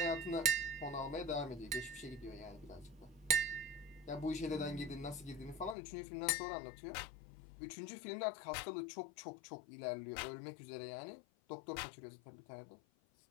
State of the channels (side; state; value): right; drops out; at 5.8 s